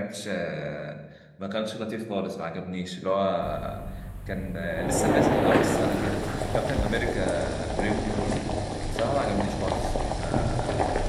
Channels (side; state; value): both; identical; correlation 1.00